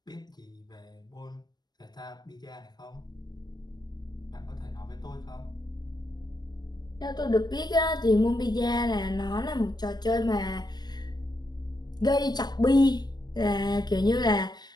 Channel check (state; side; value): late; right; 0.20 ms